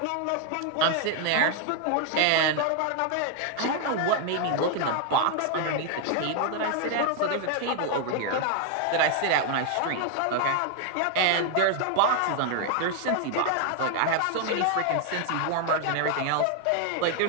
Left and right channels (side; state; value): both; different; correlation 0.00